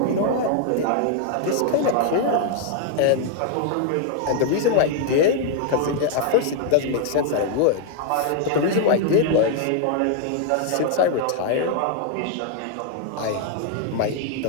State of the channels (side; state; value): both; different; correlation 0.00